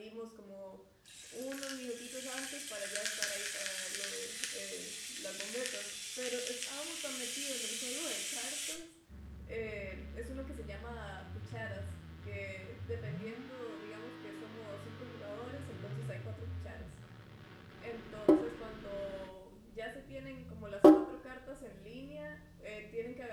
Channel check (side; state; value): both; identical; correlation 1.00